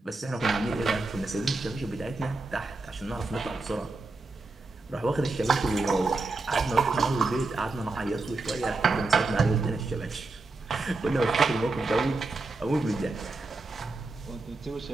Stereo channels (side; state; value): left; quieter; 3.4 dB